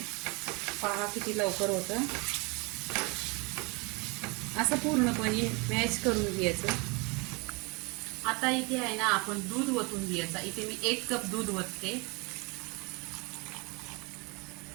पहा किती लवकर होतं। असं पूर्णपणे मॅश करून घ्यायचं। आता इथे आहे ना आपण दूध ओतून घ्यायचं। इथे मी 1 कप दूध ओतते।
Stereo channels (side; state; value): left; quieter; 28.6 dB